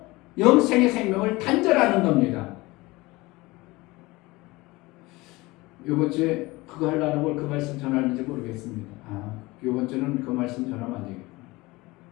영생의 생명을 단절하는 겁니다. 이번 주에 그거 하려는 걸 그 말씀 전하는지 모르겠습니다. 이번 주는 그 말씀 전하면 안 되겠구나.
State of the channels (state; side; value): quieter; right; 21.6 dB